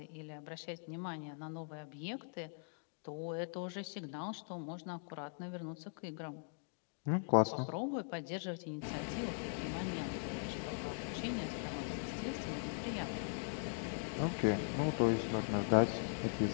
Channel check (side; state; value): right; silent; digital silence